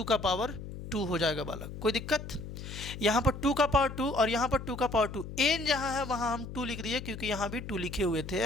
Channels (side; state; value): left; noise; hum, 10 dB below the sound